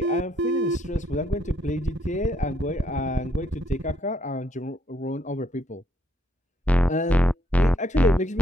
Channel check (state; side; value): normal; both; correlation 0.72